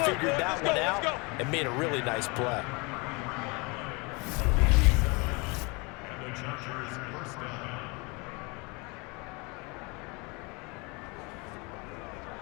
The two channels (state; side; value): quieter; right; 28.5 dB